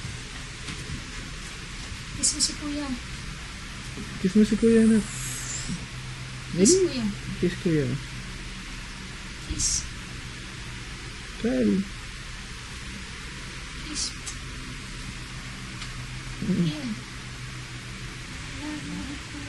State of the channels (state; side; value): identical; both; correlation 1.00